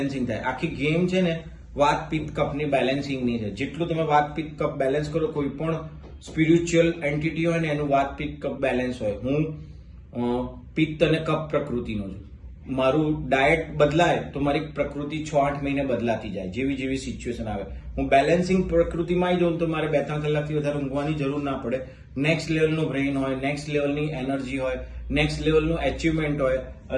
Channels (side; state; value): both; identical; correlation 1.00